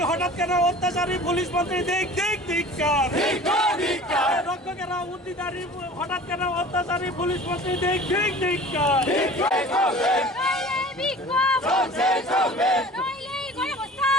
হঠাৎ কেন অত্যাচারী পুলিশ মন্ত্রী দেখ দেখ ধিক্কার। রক্ষকেরা উদ্দিদারি হঠাৎ কেন অত্যাচারী পুলিশ মন্ত্রী দেখ দেখ ধিক্কার।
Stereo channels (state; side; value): normal; both; correlation 0.43